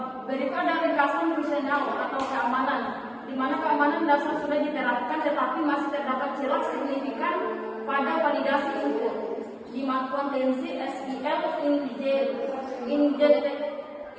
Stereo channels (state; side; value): identical; both; correlation 1.00